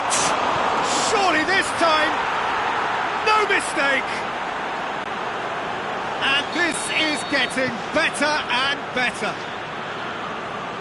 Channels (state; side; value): identical; both; correlation 1.00